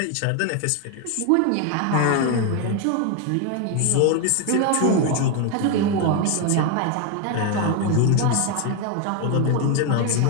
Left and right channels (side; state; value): both; different; correlation 0.01